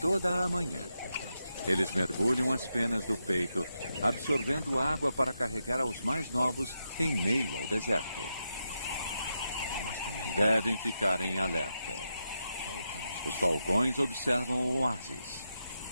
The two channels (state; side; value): inverted; both; correlation -0.86